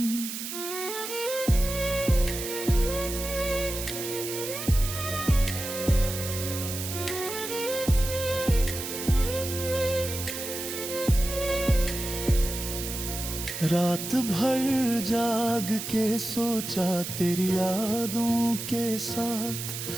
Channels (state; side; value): noise; right; hiss, 6 dB below the sound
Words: रात भर जाग के सोचा तेरी यादों के